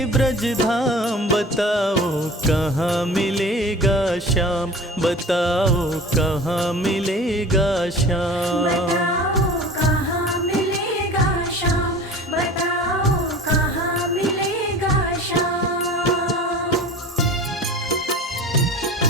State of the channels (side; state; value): both; normal; correlation 0.40